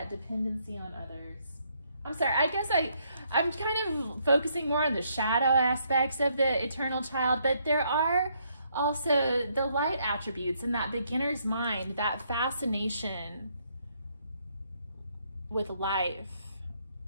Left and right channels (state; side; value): inverted; both; correlation -0.72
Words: dependency on others. I'm sorry, I guess I'm kind of focusing more on the shadow aspects of the eternal child, but there are also the light attributes in that beginner's mind, that fascination with life,